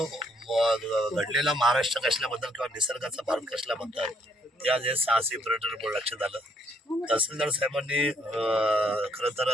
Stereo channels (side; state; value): both; normal; correlation 0.69